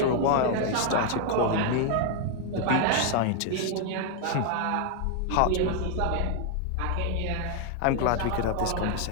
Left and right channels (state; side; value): different; both; correlation 0.00